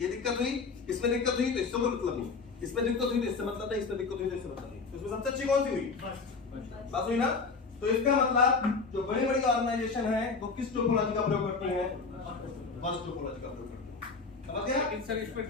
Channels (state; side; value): quieter; right; 4.6 dB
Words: दिक्कत हुई, इसमें दिक्कत हुई, तो इससे कोई मतलब नहीं। इसमें दिक्कत हुई तो इससे मतलब नहीं, इसमें दिक्कत हुई तो इससे मतलब नहीं। तो इसमें सबसे अच्छी कौन सी हुई? बस हुई ना। तो इसका मतलब जो बड़ी बड़ी ऑर्गेनाइजेशन है वो किस टोपोलॉजी का प्रयोग करती हैं? बस टोपोलॉजी का प्रयोग करती हैं। समझ गया? लेकिन सर इसमें